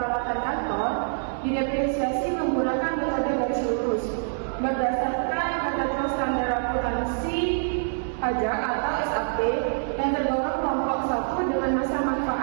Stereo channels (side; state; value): left; silent; 57 dB below the other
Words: kantor didepresiasi menggunakan metode garis lurus berdasarkan ketentuan standar akuntansi pajak atau SAP yang tergolong kelompok 1 dengan masa